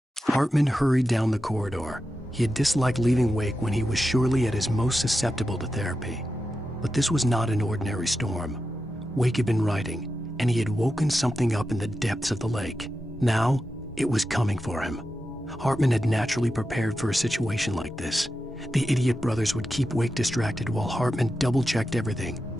Hartman hurried down the corridor. He had disliked leaving Wake when he was surely at his most susceptible to therapy. But this was not an ordinary storm. Wake had been writing, and he had woken something up in the depths of the lake. Now, it was coming for him. Hartman had naturally prepared for a situation like this. The idiot brothers would keep Wake distracted while Hartman double-checked everything,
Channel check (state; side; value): normal; both; correlation 0.90